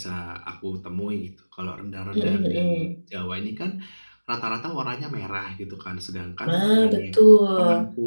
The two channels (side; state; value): both; inverted; correlation -1.00